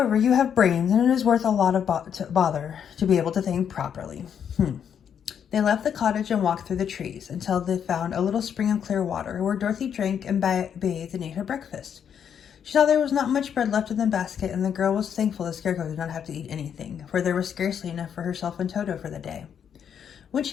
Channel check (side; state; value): right; quieter; 8.2 dB